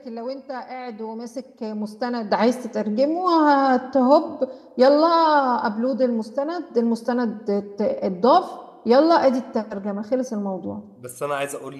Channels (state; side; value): identical; both; correlation 1.00